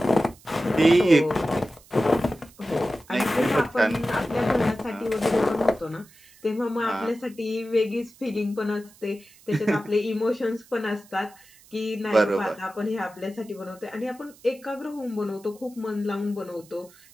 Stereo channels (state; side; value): noise; right; hiss, 26 dB below the sound